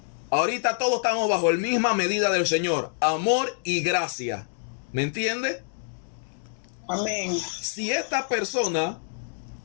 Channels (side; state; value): right; silent; digital silence